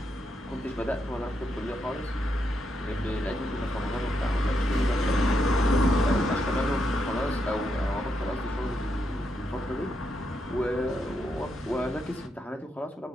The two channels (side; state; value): both; normal; correlation 0.81